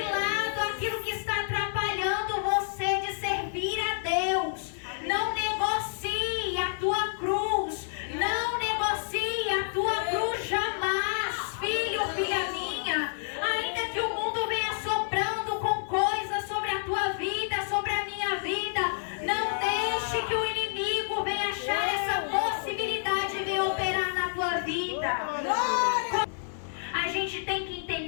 lado aquilo que está atrapalhando você de servir a Deus. Não negocie a tua cruz, não negocie a tua cruz jamais, filho, filha minha. Ainda que o mundo venha soprando com coisas sobre a tua vida, sobre a minha vida, não deixe que o inimigo venha achar essa possibilidade de vir operar na tua vida. A gente tem que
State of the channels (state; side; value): silent; right; 59 dB below the other